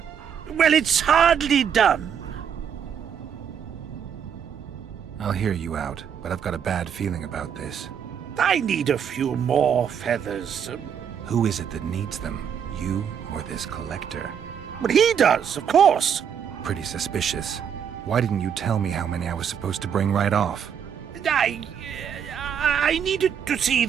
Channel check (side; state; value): left; quieter; 8.0 dB